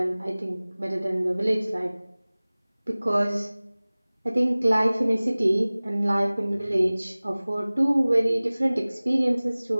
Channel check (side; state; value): both; inverted; correlation -0.99